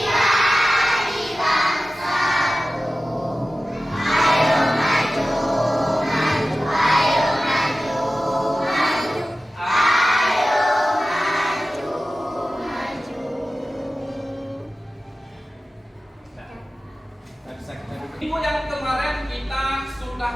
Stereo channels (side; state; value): both; normal; correlation 0.95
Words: Minggu yang kemarin kita